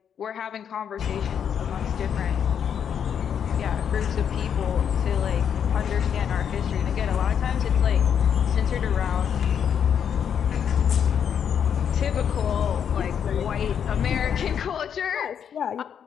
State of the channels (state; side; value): quieter; right; 8.2 dB